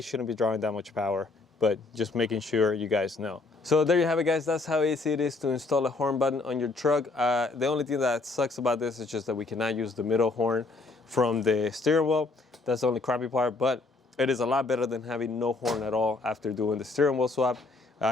shouldn't be drawing that much power, but just making sure you guys know. So there you have it, guys. That's how easy it is to install a horn button on your truck. The only thing that sucks about this is just that we cannot use the middle horn from the steering wheel. That's the only crappy part, but it is a lot better than having no horn at all after doing the steering wheel swap.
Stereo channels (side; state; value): right; quieter; 3.6 dB